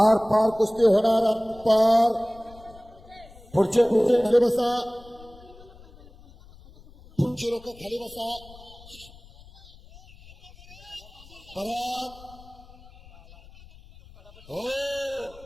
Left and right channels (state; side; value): noise; left; rumble, 22 dB below the sound